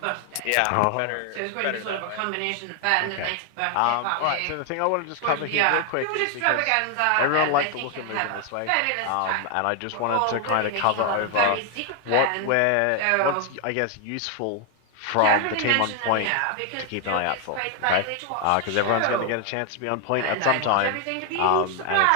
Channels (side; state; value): both; different; correlation 0.00